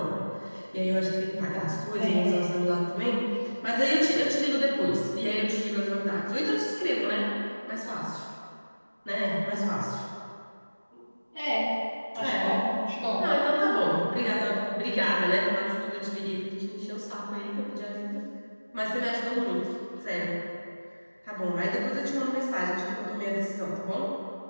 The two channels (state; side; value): inverted; both; correlation -1.00